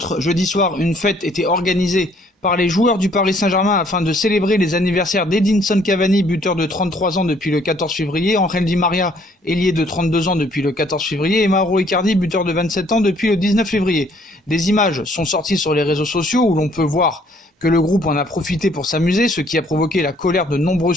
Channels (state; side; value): normal; both; correlation 0.63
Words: Jeudi soir, une fête était organisée par les joueurs du Paris Saint-Germain afin de célébrer les anniversaires d'Edinson Cavani, buteur de 33 ans depuis le 14 février, Angel Di Maria, ailier de 32 ans depuis le 14 février, et Mauro Icardi, buteur de 27 ans depuis le 19 février. Des images sont sorties sur les réseaux sociaux où l'on peut voir que le groupe en a profité pour s'amuser, ce qui a provoqué la colère de nombreux